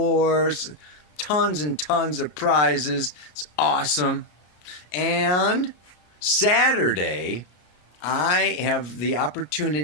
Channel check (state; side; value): late; right; 33 ms